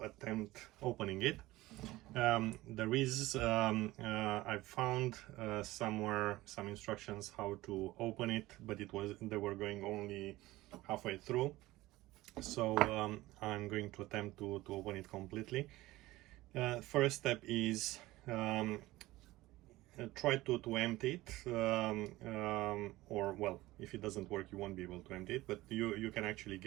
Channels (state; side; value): quieter; left; 18.1 dB